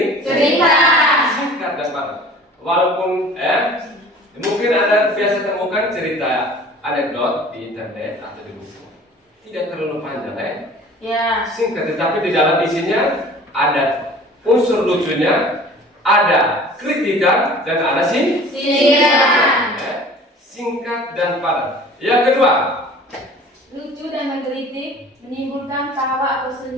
Singkat dan padat. Walaupun mungkin Anda biasa temukan cerita anekdot di internet atau di buku. Tidak terlalu panjang Ya. singkat, tetapi di dalam isinya ada unsur lucunya, ada kritikan dan ada singkat dan padat. Yang kedua, Lucu dan menggelitik, menimbulkan tawa atau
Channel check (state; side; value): normal; both; correlation 0.46